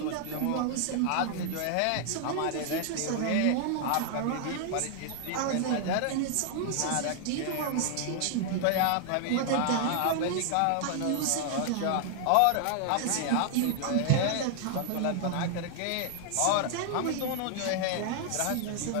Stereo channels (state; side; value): different; both; correlation 0.00